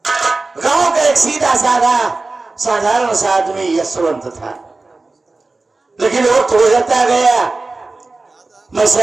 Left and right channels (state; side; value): quieter; left; 3.4 dB